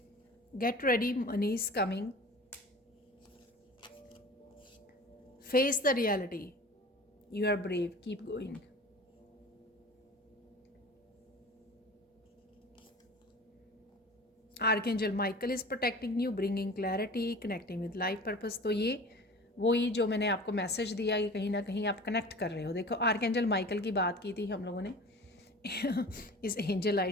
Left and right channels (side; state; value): both; normal; correlation 0.40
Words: Get ready, money is coming, face the reality, you are brave, keep going. Archangel Michael is protecting you, bringing clarity, connecting with life purpose. तो ये वही जो मैंने आपको मैसेज दिया कि कहीं ना कहीं आप कनेक्ट कर रहे हो। देखो, आर्कएंजल माइकल की बात की थी हम लोगों ने इस एंजल